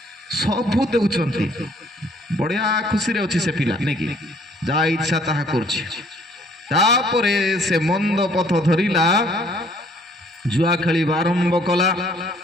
सब देउचंती बढ़िया खुशी रे अछि से पिला नै कि जा इच्छा ताहा करछि तापरे से मंद पथ धरिला जुआ खेली आरंभ कला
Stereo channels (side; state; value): both; normal; correlation 0.61